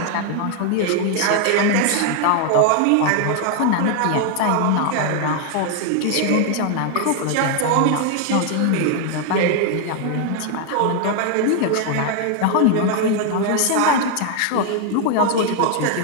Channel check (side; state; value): both; different; correlation 0.00